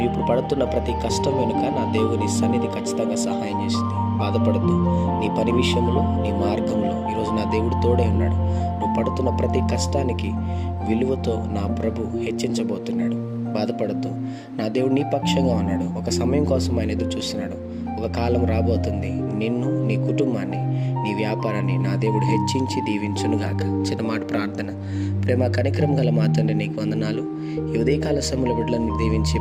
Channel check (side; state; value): both; identical; correlation 1.00